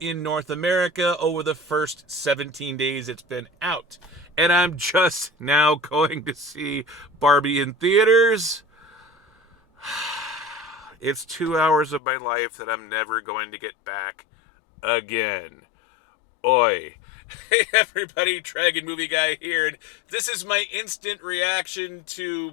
North America over the first 17 days it's been out. And I'm just now going to see Barbie in theaters. It's 2 hours of my life that I'm never going to get back again. Oi. Hey everybody, Dragon Movie Guy here, and this is my instant reaction to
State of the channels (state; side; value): drops out; right; at 12.0 s